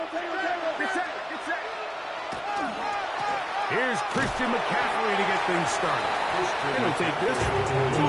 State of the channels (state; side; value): identical; both; correlation 1.00